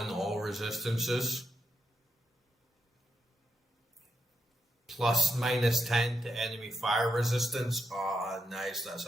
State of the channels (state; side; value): normal; both; correlation 0.82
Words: all resistances. Plus -10 to enemy fire resistance. Ah, nice. That's